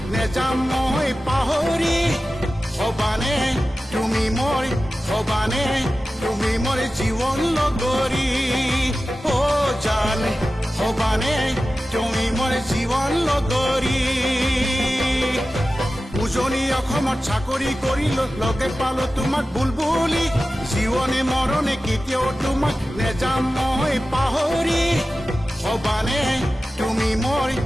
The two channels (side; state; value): both; normal; correlation 0.95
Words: নেযাম মই পাহৰি হবানে তুমি মোৰ জীৱন লগৰী ও জান হবানে তুমি মোৰ জীৱন লগৰী উজনি অসমত চাকৰি কৰিলো লগে পালো তোমাক বুলবুলি জীৱনে মৰণে কেতিয়াও তোমাক নেযাম মই পাহৰি হবানে তুমি